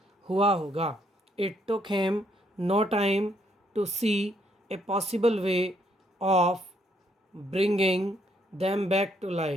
हुआ होगा। It took him no time to see a possible way of bringing them back to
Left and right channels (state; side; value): normal; both; correlation 0.71